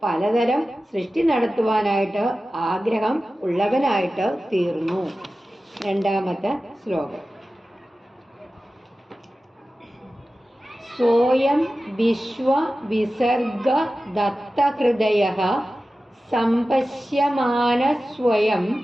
പലതരം സൃഷ്ടി നടത്തുവാനായിട്ട് ആഗ്രഹം ഉള്ളവനായിട്ട് തീർന്നു. 2ാമത്തെ ശ്ലോകം. സ്വയം വിശ്വ വിസർഗ ദത്തഹൃദയഃ സംപശ്യമാന സ്വയം.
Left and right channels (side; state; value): both; normal; correlation 0.95